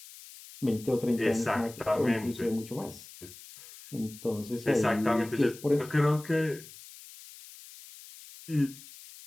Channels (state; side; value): noise; left; hiss, 18 dB below the sound